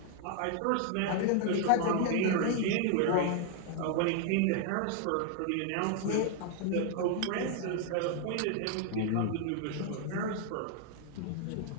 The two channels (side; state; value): both; different; correlation 0.00